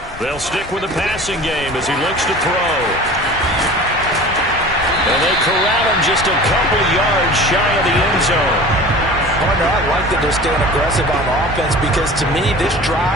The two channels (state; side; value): normal; both; correlation 0.40